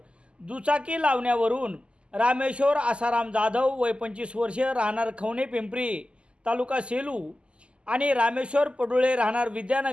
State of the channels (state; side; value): late; left; 0.052 ms